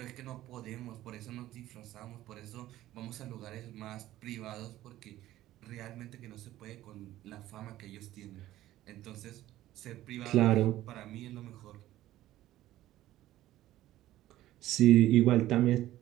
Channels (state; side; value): quieter; left; 14.6 dB